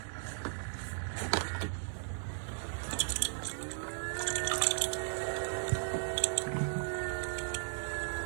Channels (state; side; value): silent; left; 54 dB below the other